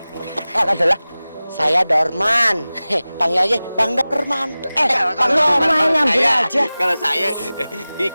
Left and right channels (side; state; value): both; inverted; correlation -0.98